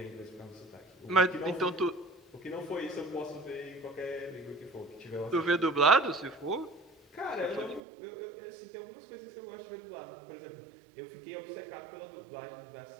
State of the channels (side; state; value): left; drops out; at 7.8 s